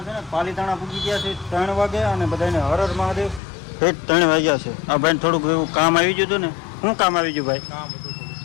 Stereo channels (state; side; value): drops out; right; at 3.4 s